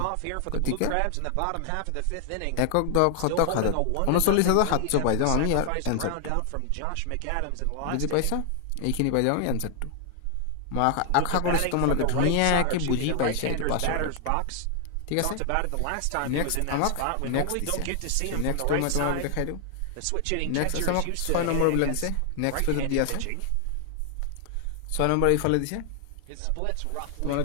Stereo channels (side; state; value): both; different; correlation 0.00